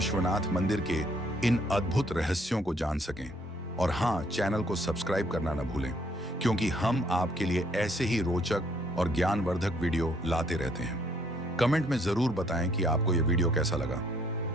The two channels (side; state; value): both; normal; correlation 0.66